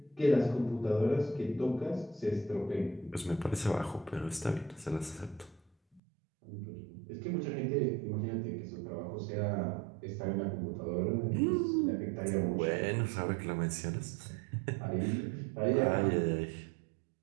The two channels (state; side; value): drops out; left; at 6.0 s